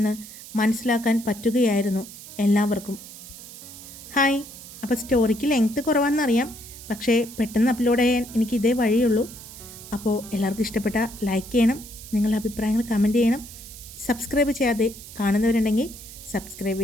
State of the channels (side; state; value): right; noise; hiss, 15 dB below the sound